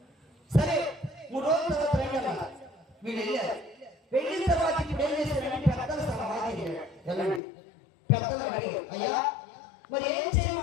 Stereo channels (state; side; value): drops out; right; at 7.4 s